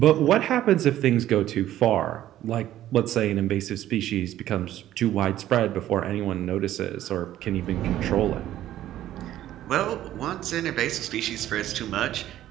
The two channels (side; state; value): left; quieter; 13.0 dB